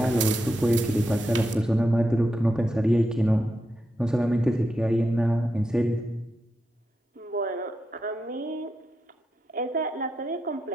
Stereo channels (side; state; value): both; normal; correlation 0.86